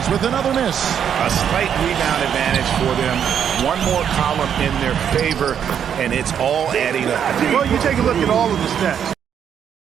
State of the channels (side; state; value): left; quieter; 8.5 dB